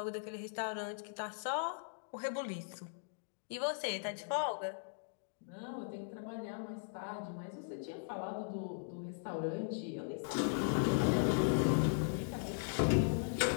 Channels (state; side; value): silent; right; digital silence